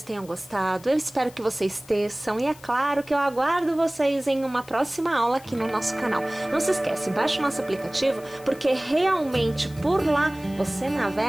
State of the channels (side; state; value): left; noise; hiss, 22 dB below the sound